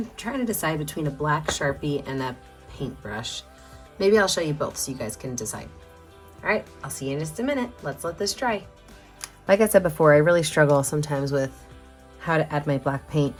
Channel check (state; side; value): identical; both; correlation 1.00